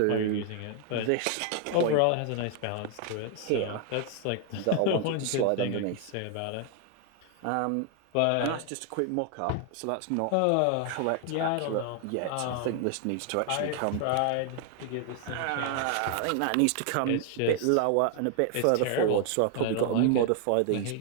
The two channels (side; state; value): both; different; correlation 0.00